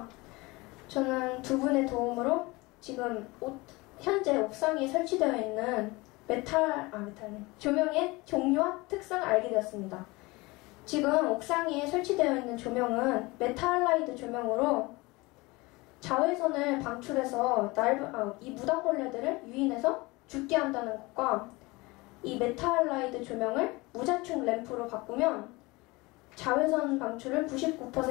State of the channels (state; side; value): quieter; right; 23.2 dB